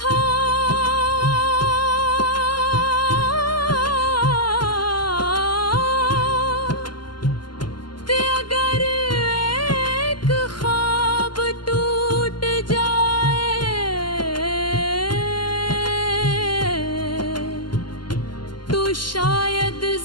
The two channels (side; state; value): right; late; 0.71 ms